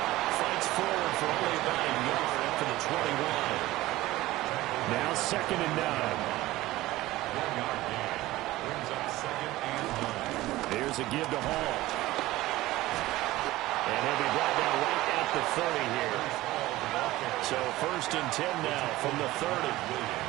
Fights forward for only about a yard up to the 21. Now 2nd and 9. Here's a give to Hall. And he'll be brought down right at the 30 here. So 1st and 10 now from the 30.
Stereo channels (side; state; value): left; quieter; 17.4 dB